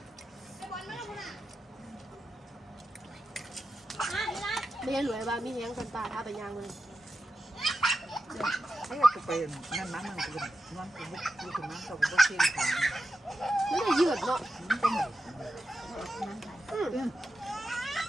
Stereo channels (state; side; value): normal; both; correlation 0.90